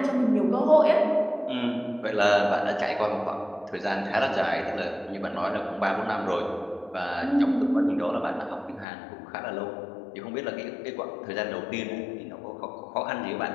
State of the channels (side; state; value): right; drops out; at 8.8 s